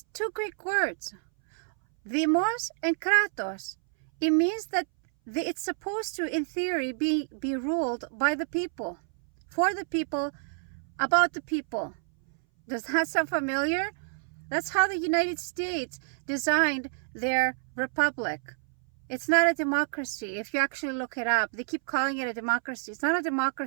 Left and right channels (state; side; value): silent; left; 59 dB below the other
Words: two Greek words, demos and kratos. It means that it's supposed to, in theory, be ruled by the people, for the people, about the people. Does that sound familiar? That's how the United States designed their republic. It's not a democracy. If you actually look it up, they keep calling it a democracy. It's not a